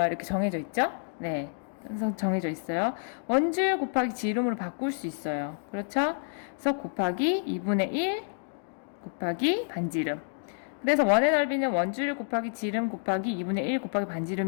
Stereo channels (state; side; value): silent; right; digital silence